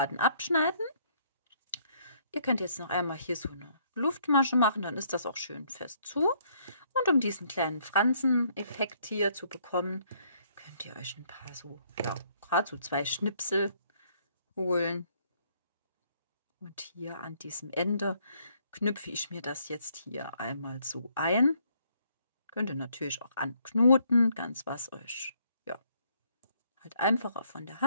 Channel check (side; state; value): both; inverted; correlation -0.68